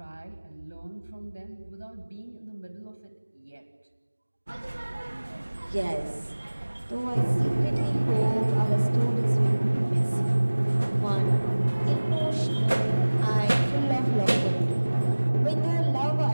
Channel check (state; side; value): inverted; both; correlation -1.00